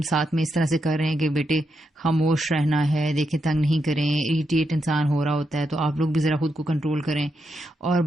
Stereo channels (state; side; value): normal; both; correlation 0.83